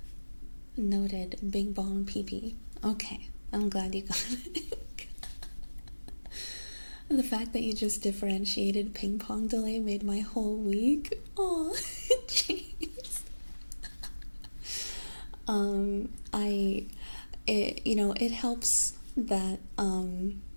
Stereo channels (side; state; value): both; inverted; correlation -1.00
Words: Noted. Big bong PP. Okay, I'm glad you got it. The fact that you just differentiated ping pong delay made my whole week. Oh, jeez. It helps that